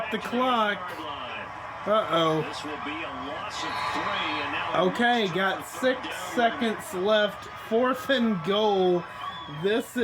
the clock. Uh-oh. This will be a loss of 3, and now Okay, got 6 seconds left. 4th and goal. This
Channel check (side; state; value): both; identical; correlation 1.00